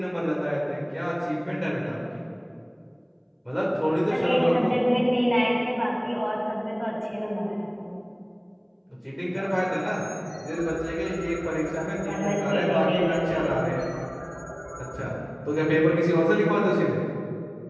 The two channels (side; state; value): both; identical; correlation 1.00